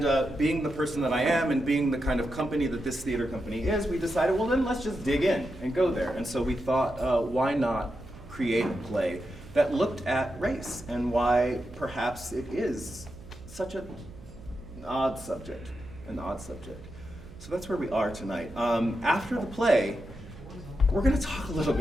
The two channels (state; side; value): noise; right; hum, 17 dB below the sound